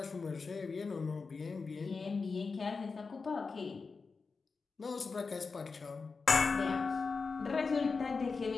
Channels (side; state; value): right; quieter; 4.6 dB